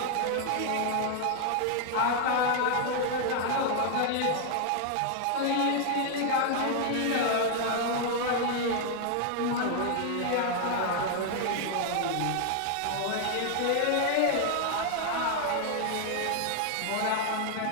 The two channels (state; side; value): different; both; correlation 0.00